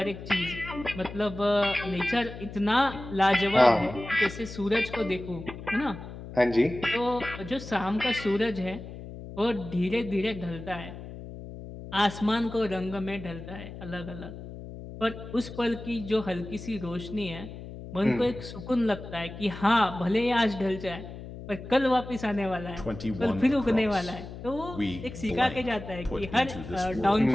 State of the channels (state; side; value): noise; left; hum, 12 dB below the sound